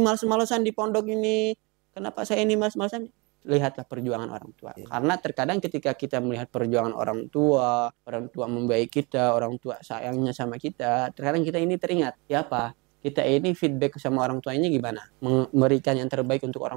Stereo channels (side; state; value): left; quieter; 28.5 dB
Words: di pondok ini? Kenapa saya ini malas-malasan? Lihatlah perjuangan orang tua. Karena terkadang ketika kita melihat perjuangan orang tua membiayai kita, orang tua sayangnya sama kita, terkadang kita ini teringat, ya apa? Kita ini feedback sama orang tuanya gimana? Memberikan yang terbaik untuk